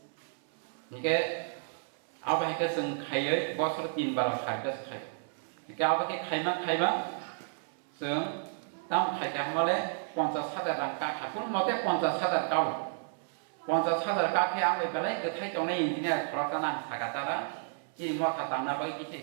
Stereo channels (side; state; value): left; silent; 56 dB below the other